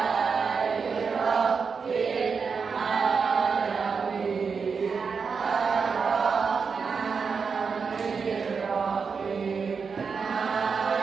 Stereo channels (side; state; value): left; quieter; 5.5 dB